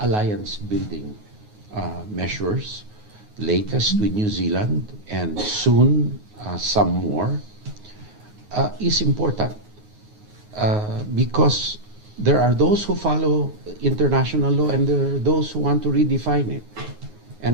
building measures, latest with New Zealand and soon some more, is important because there are those who follow international law and there are those who want to redefine it.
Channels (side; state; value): left; late; 9.5 ms